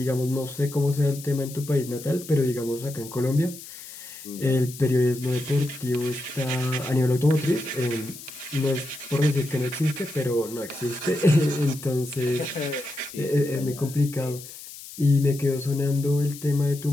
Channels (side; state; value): left; noise; hiss, 14 dB below the sound